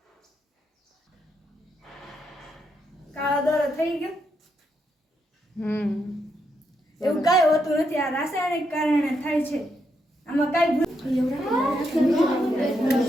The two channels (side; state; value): both; normal; correlation 0.80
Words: કાળો દોરો થઈ ગયો. એવું કઈ હોતું નથી. આ રાસાયણિક કારણે થાય છે. આમાં કઈ